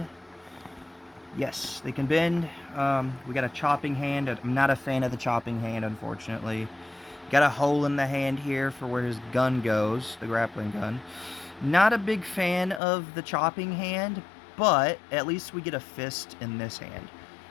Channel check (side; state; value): right; drops out; at 12.8 s